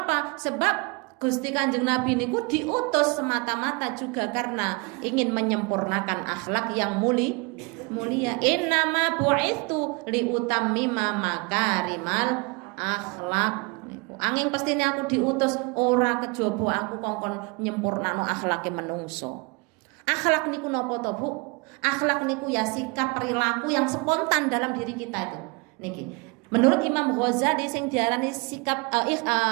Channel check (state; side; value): quieter; left; 29.2 dB